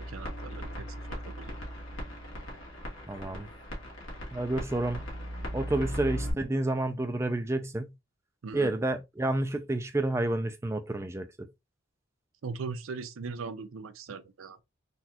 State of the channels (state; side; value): normal; both; correlation 0.82